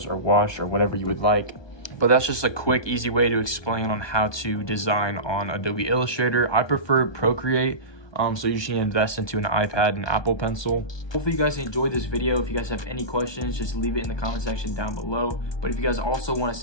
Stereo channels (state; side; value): late; right; 1.2 ms